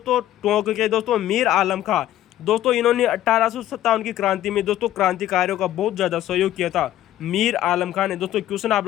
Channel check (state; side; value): quieter; right; 13.1 dB